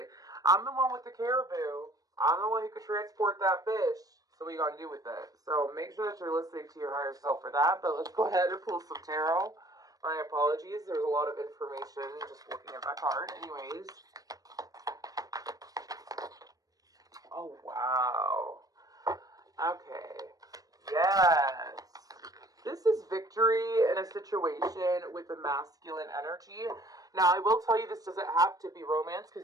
I'm the one with the caribou. I'm the one who could transport that fish. So what are you going to do with it? So make sure that you're listening to your higher self for that. But let's go ahead and pull some tarot. My apologies. There's a lot of information just looking at that card. Anyways. Oh, wow. Okay. Yes. This is victory in a situation with a masculine energy. Now, I will tell you this doesn't have to be romance,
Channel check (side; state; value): left; late; 0.18 ms